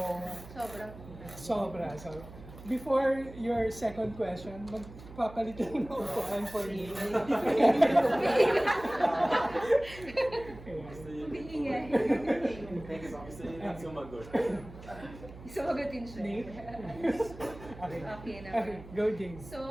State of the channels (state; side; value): noise; right; hum, 16 dB below the sound